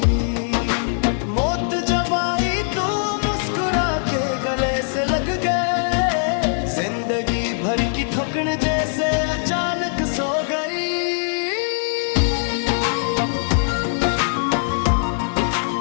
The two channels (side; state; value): right; silent; digital silence